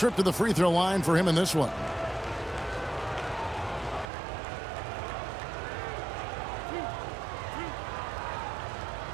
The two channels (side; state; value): left; drops out; at 4.0 s